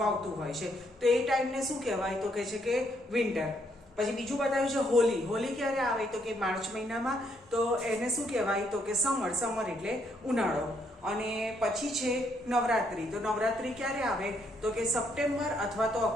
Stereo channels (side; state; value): both; normal; correlation 0.73